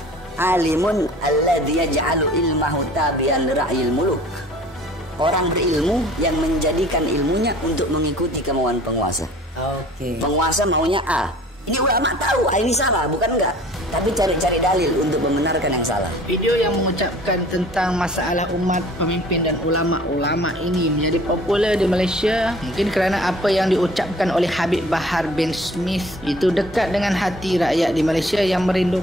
Alimun alladzi yaj'alu ilmahu tabi'an ra'yil muluk. Orang berilmu yang menjadikan ilmunya untuk mengikuti kemauan penguasa. Penguasa maunya A. Ini ulama tahu ini salah, bukan enggak. Tapi cari-cari dalil untuk membenarkan yang salah. Video yang mengucapkan tentang masalah umat, pemimpin dan ulama-ulama ini menjadi popular di Malaysia mungkin kerana apa yang diucapkan oleh Habib Bahar bin Smith itu dekat dengan hati rakyat di Malaysia yang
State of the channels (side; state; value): both; normal; correlation 0.49